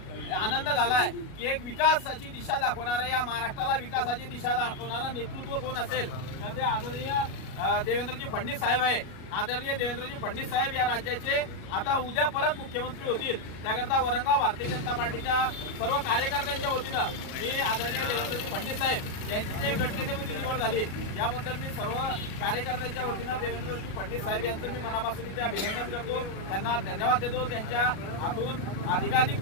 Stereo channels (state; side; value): late; right; 37 ms